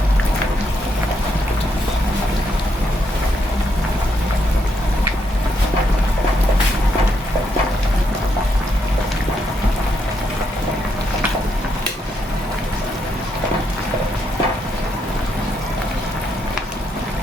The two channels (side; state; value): both; normal; correlation 0.77